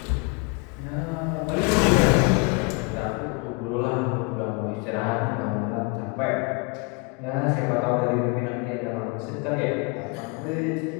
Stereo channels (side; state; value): right; quieter; 28.9 dB